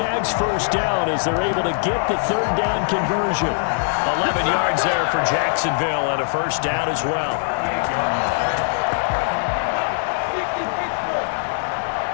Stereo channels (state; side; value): silent; right; 60 dB below the other